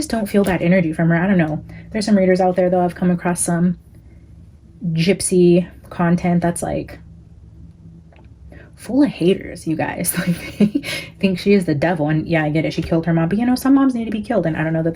don't feel that energy from her. I don't know. There's some readers out there though. I've come across some Gypsy content that's like full of haters, you guys. Like, think she is the devil. And yeah, I get it, she killed her mom, but you know, some moms need to be killed, and I don't know that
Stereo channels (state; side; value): identical; both; correlation 1.00